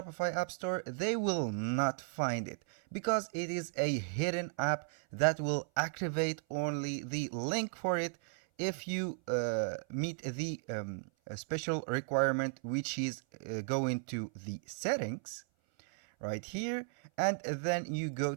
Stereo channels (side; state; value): left; silent; 54 dB below the other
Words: App Store, they will not find it because it is a hidden app that will activate only the link for it if you meet the special requirement, which is go into the settings right here, and then you go